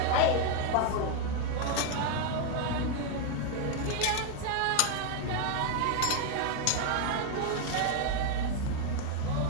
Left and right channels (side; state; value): both; different; correlation 0.01